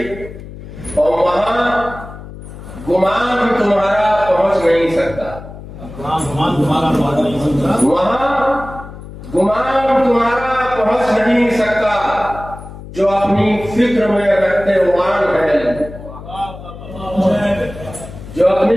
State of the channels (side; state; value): left; noise; hum, 14 dB below the sound